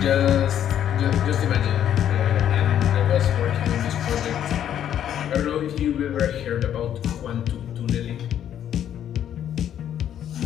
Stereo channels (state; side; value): quieter; right; 10.2 dB